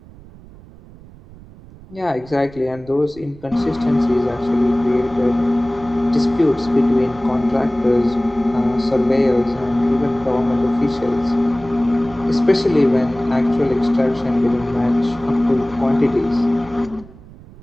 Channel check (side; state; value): right; noise; rumble, 21 dB below the sound